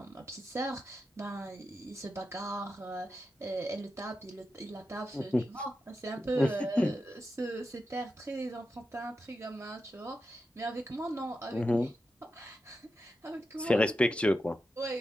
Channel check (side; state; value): both; normal; correlation 0.89